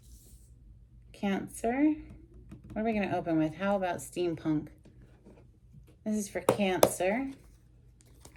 Cancer. What are we going to open with? How about steampunk? This is for Cancer.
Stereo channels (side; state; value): both; identical; correlation 1.00